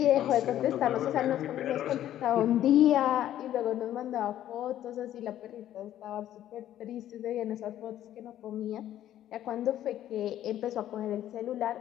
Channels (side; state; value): right; quieter; 12.1 dB